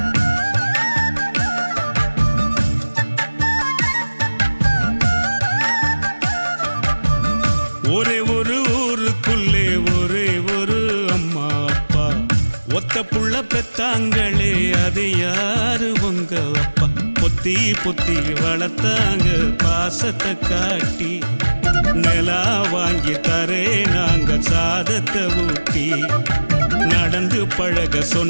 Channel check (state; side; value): inverted; both; correlation -1.00